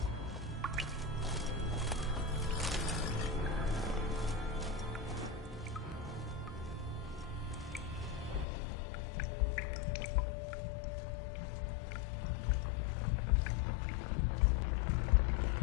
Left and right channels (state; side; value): drops out; right; at 8.5 s